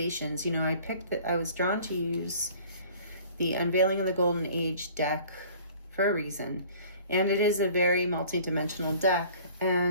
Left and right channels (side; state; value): both; inverted; correlation -0.50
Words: I was drawn to use the Unveiling of the Golden Age deck for a reason. And it is a very multi-dimensional deck.